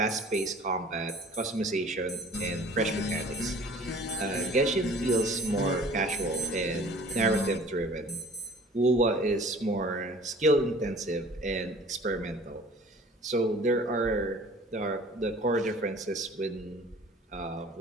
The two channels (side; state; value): both; normal; correlation 0.49